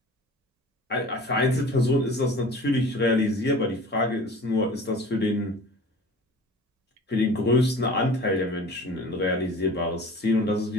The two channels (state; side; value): normal; both; correlation 0.42